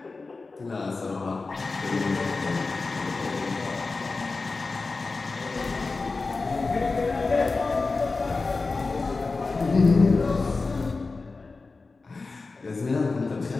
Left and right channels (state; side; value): quieter; right; 3.9 dB